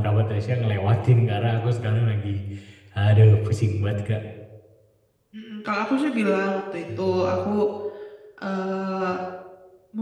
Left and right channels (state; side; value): identical; both; correlation 1.00